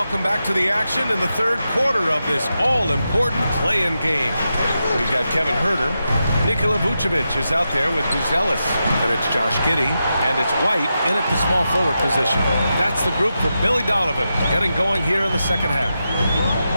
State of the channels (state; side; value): inverted; both; correlation -0.88